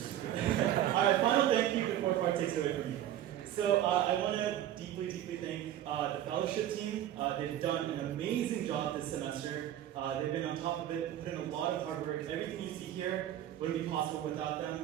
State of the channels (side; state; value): left; quieter; 11.8 dB